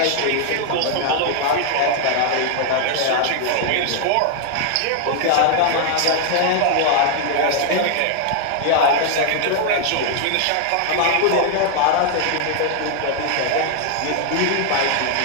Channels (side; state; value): both; different; correlation 0.00